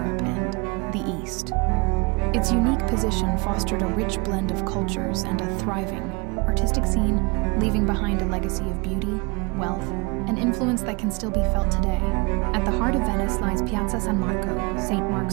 and the East. Its unique position fostered a rich blend of cultures and a thriving, artistic scene, leaving behind a legacy of beauty, wealth, and influence that can still be felt today. At the heart of Venice lies Piazza San Marco, St.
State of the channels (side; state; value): left; quieter; 28.8 dB